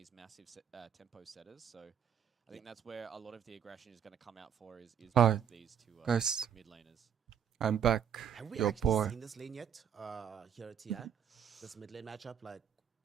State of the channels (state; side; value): quieter; left; 8.4 dB